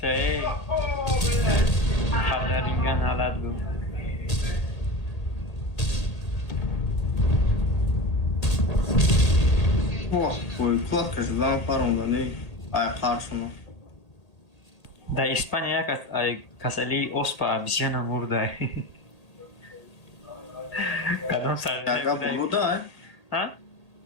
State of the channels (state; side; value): late; right; 1.8 ms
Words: ای. خبر رینگن حالت بود. О, ой, кладка же дала пару да не. Ай, харшуно. Da İspanya kasali ospa bisyana murda. Kadın sarı. Яга болуда, Ha?